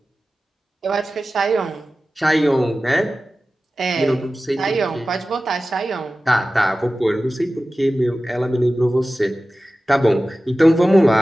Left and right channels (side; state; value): both; normal; correlation 0.95